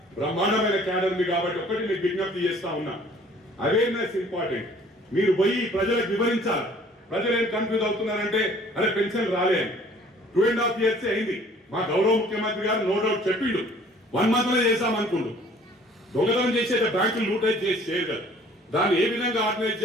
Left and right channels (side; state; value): both; normal; correlation 0.54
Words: బ్రహ్మాండమైన క్యాడర్ ఉంది కాబట్టి ఒకటి మీకు విజ్ఞప్తి చేస్తా ఉన్నా, అవేర్నెస్ ఇంపార్టెంట్. మీరు పోయి ప్రజలకు వివరించాలి. ప్రజలు ఏం కన్ఫ్యూజ్ అవుతున్నారంటే అరే పెన్షన్ రాలే అని. 2.5 years అయింది. మా గౌరవ ముఖ్యమంత్రి గారు నో డౌట్ చెప్పిండు 1 month లో చేశామనుకుండు. దొంగతనం చేసే బ్యాంకులు లూటైజ్ చేసి చేయరు. దాన్ని ఏ విధంగా ఆర్గనైజ్